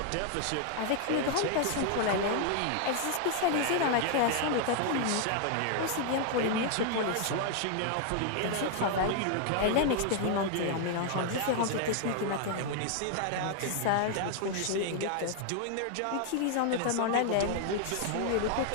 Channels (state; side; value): different; both; correlation 0.00